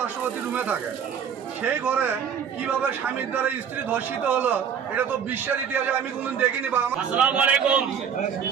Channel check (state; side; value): quieter; left; 7.6 dB